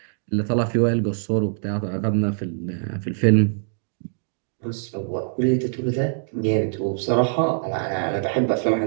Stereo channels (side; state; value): left; silent; digital silence